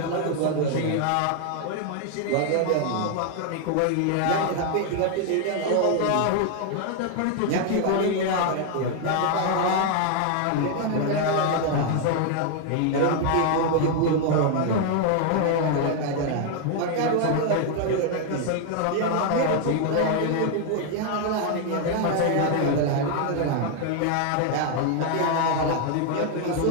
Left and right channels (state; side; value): different; both; correlation 0.00